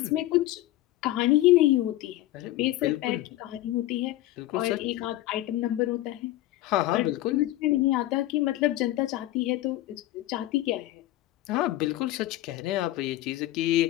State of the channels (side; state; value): right; quieter; 15.8 dB